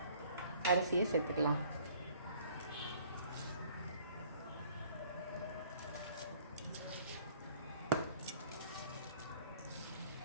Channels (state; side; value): inverted; both; correlation -0.56